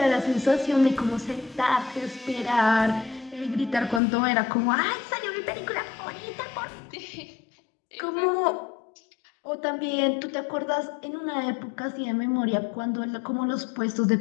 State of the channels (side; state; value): right; drops out; at 4.0 s